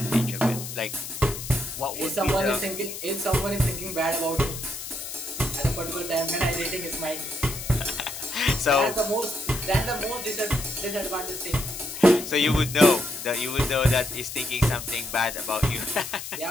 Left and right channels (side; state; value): left; noise; hiss, 8 dB below the sound